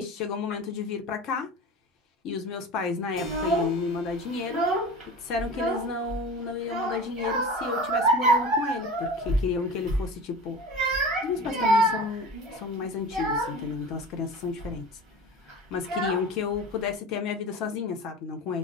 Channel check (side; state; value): both; normal; correlation 0.34